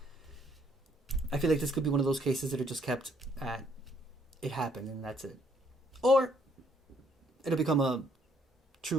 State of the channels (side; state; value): both; normal; correlation 0.67